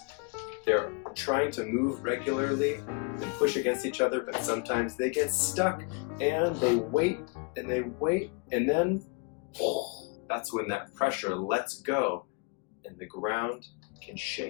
They're trying to move regularly and push against each other, but sometimes they get stuck and they wait, and then that's when that pressure lets go and the ground can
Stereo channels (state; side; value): quieter; right; 32.6 dB